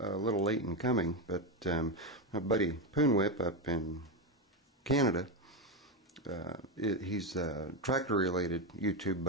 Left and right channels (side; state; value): both; normal; correlation 0.10